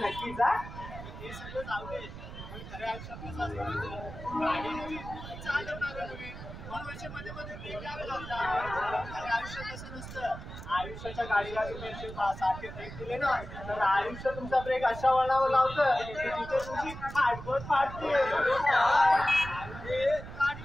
आयुष्याच्या गाडीला तुम्ही सारखे ब्रेक दिले ना तर आयुष्य तुमचा ब्रेक अशा वळणावर लावतं की तिथे तुमची फाटबोट फाटते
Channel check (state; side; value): noise; right; rumble, 11 dB below the sound